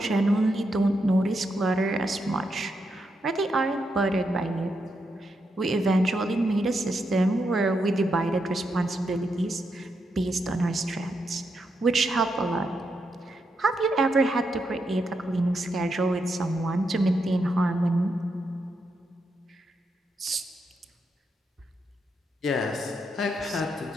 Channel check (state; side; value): normal; both; correlation 0.82